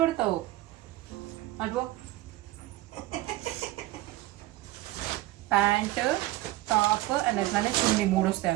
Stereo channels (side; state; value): left; quieter; 17.1 dB